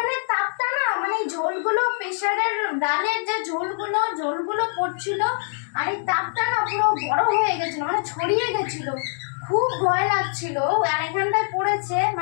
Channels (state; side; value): silent; right; digital silence